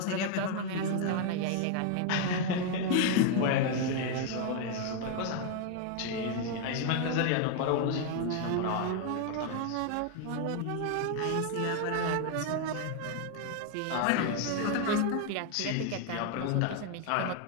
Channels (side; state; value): both; different; correlation 0.00